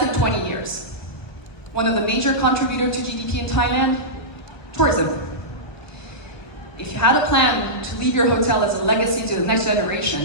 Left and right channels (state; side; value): late; right; 1.4 ms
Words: in 20 years. One of the major contributors to GDP in Thailand, tourism. If you had a plan to leave your hotel as a legacy to the next